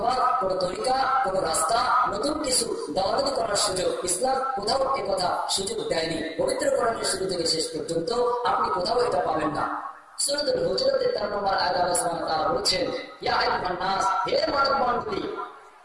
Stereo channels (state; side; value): identical; both; correlation 1.00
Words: কোনো তরিকা, কোনো রাস্তা, নতুন কিছু দাওয়াতি করার সুযোগ ইসলাম কোথাও একথা সুযোগ দেয়নি। পবিত্র কোরআনের শুরু থেকে শেষ পর্যন্ত আপনি কোথাও এটা পাবেন না। সূরাতুল হুজুরাতের 4 নম্বর আয়াতে আল্লাহ সুবহানাহু ওয়া তাআলা বলেছেন, ইয়া আইয়ুহান নাস, হে মানবমণ্ডলী,